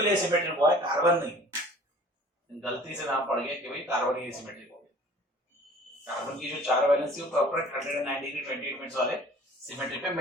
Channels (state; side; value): normal; both; correlation 0.48